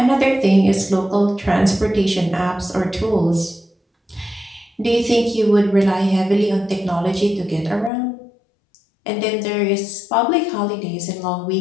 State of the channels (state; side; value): drops out; right; at 7.9 s